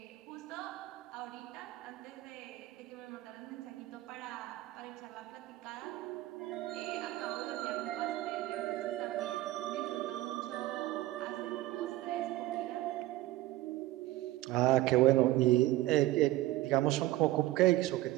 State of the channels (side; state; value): left; quieter; 16.6 dB